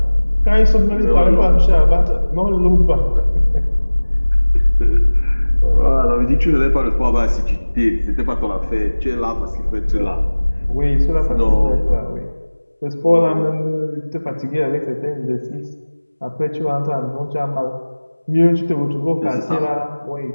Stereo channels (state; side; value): inverted; both; correlation -1.00